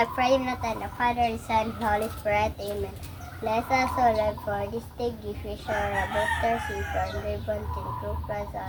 pray na tayo na Father, Son, Holy Spirit. Amen. Bless us, O Lord, for this day. Give you sure a better safe and ribbon to improve us,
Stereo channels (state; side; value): identical; both; correlation 1.00